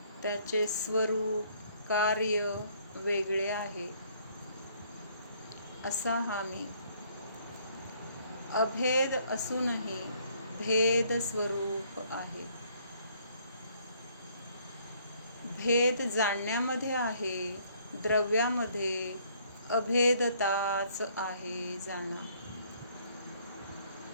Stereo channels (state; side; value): inverted; both; correlation -0.64